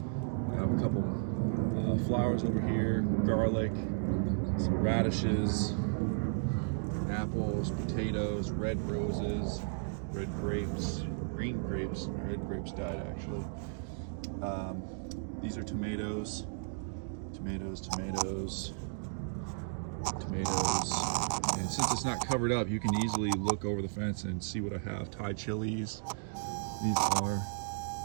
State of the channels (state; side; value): silent; left; digital silence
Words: I have a couple flowers over here, garlic, some radishes, apples, potatoes, red roses, red grapes, green grapes. Red grapes died actually. These are tomatoes, tomatoes. And since it's not covered up, you can easily look over the fence and see what I have. Thai chilies.